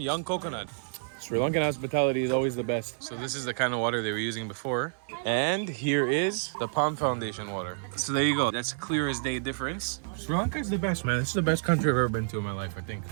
coconut. Sri Lankan hospitality is always the best. So this is the kind of water they were using before. And here is the Palm Foundation water. So there you go. That's a clear as day difference. Sri Lanka is the best, man. This is the best country I've ever been to in my life, I think.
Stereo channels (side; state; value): left; silent; digital silence